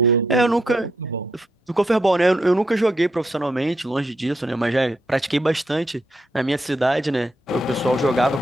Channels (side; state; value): both; normal; correlation 0.79